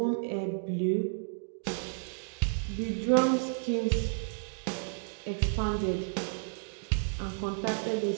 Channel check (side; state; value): left; silent; digital silence